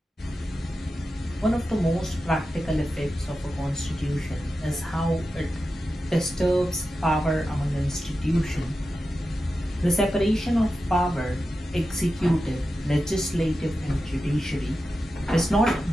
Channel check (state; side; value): normal; both; correlation 0.91